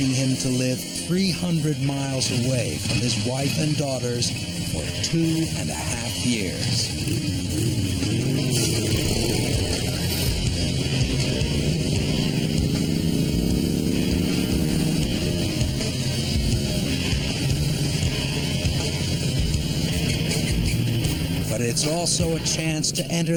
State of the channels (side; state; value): both; identical; correlation 1.00